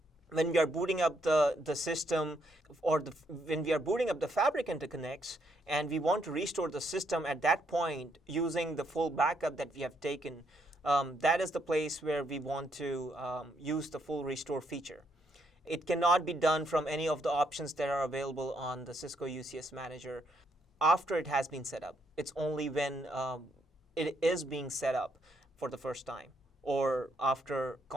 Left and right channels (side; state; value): both; normal; correlation 0.74